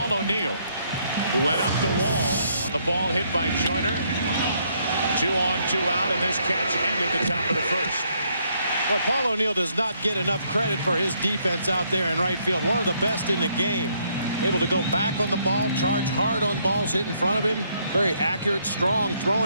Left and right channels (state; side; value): inverted; both; correlation -0.71